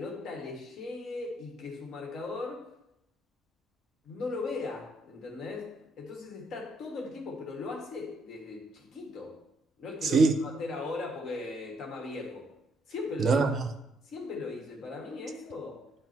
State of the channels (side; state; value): both; normal; correlation 0.72